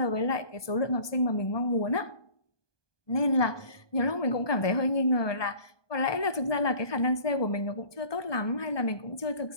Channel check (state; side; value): late; right; 1.2 ms